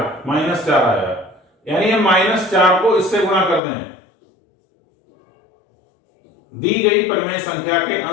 -4 आया, यानी हम -4 को इससे गुणा कर दें दी गई परिमेय संख्या के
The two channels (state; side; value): drops out; right; at 3.6 s